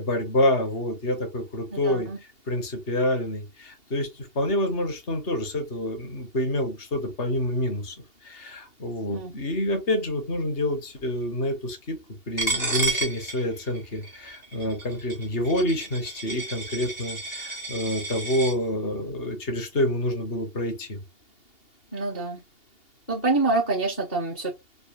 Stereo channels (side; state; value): right; late; 2.8 ms